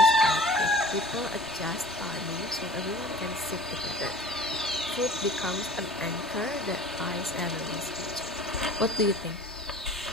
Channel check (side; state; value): both; normal; correlation 0.43